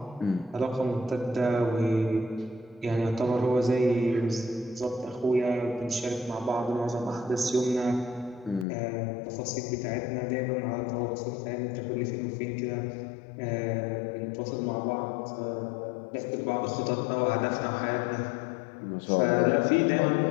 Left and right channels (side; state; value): right; drops out; at 8.7 s